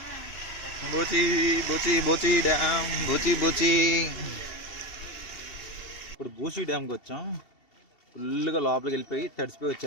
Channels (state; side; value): late; right; 2.7 ms